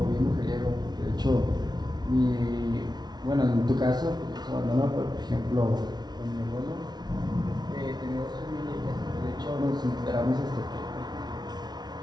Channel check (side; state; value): left; late; 0.20 ms